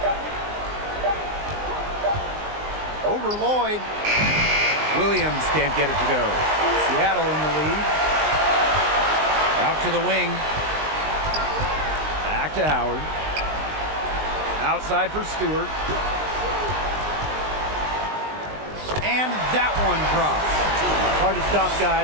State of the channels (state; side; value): late; left; 19 ms